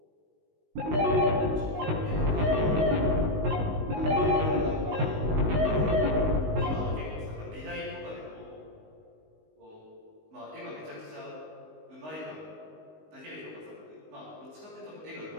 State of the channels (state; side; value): late; left; 19 ms